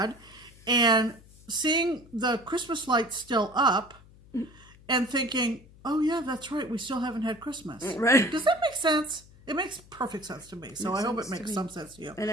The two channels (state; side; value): noise; left; hum, 24 dB below the sound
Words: and seeing the Christmas lights still up and thinking, oh yeah, that's right, we still haven't had Christmas. Right. Does that make sense? It makes perfect sense to me. So I hope it makes some sense to you. And